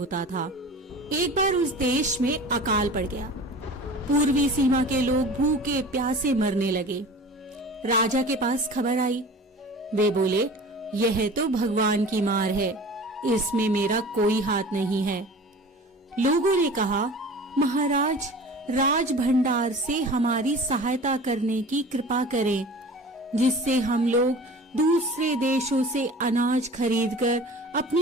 था। एक बार उस देश में अकाल पड़ गया। पूर्वी सीमा के लोग भूखे प्यासे मरने लगे। राजा के पास खबर आई। वे बोले, यह तो भगवान की मार है, इसमें मेरा कोई हाथ नहीं है। लोगों ने कहा, महाराज, राज भंडार से हमारी सहायता करने की कृपा करें, जिससे हम लोग दूसरे देशों से अनाज खरीदकर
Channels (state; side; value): normal; both; correlation 0.40